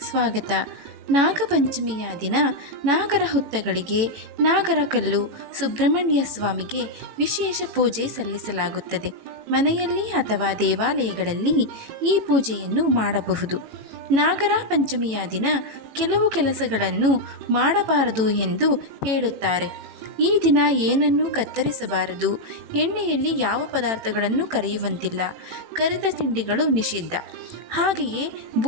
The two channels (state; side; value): late; left; 18 ms